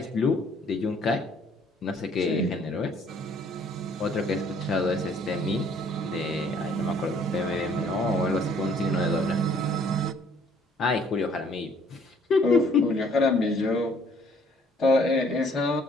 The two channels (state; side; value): normal; both; correlation 0.60